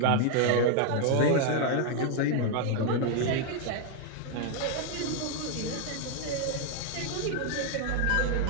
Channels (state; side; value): different; both; correlation 0.00